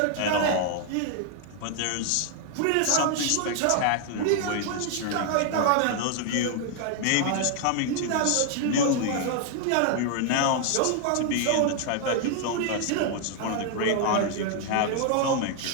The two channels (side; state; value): both; different; correlation 0.00